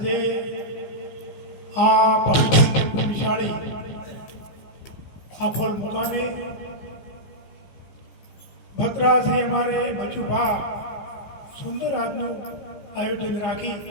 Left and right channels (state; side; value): late; right; 15 ms